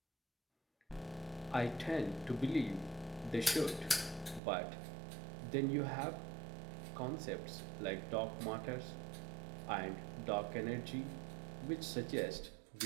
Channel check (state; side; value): drops out; left; at 4.4 s